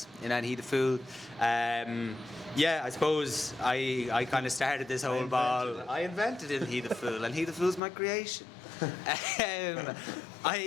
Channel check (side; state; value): right; drops out; at 7.8 s